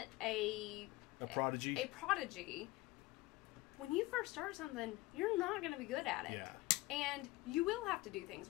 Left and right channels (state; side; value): quieter; right; 20.5 dB